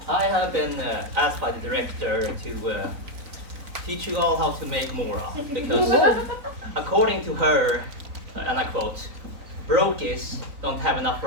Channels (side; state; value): left; late; 3.9 ms